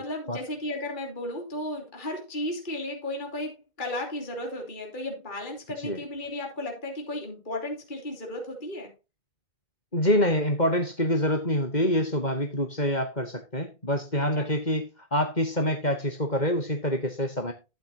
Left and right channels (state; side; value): late; right; 2.1 ms